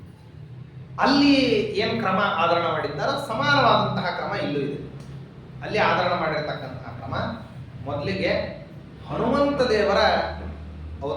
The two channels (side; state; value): both; identical; correlation 1.00